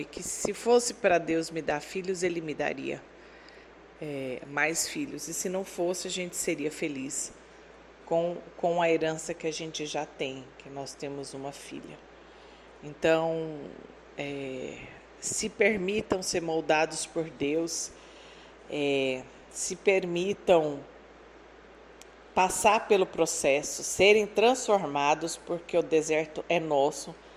que se fosse para Deus me dar filhos, Ele me daria mais filhos. E se não fosse, a gente seria feliz com a herança que a gente já tem, que nós temos uma filha. Então, se permitam ser moldados por Deus, se permitam passar pelo processo, serem transformados, porque o deserto é nosso.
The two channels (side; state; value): both; identical; correlation 1.00